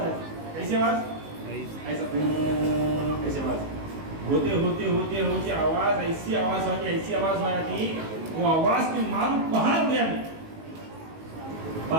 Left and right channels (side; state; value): left; late; 19 ms